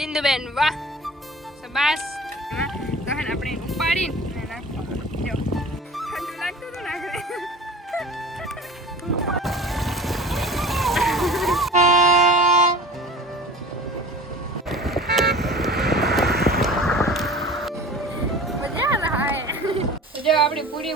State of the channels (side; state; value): both; normal; correlation 0.39